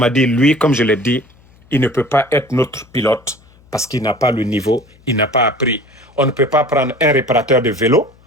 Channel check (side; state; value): left; noise; hum, 29 dB below the sound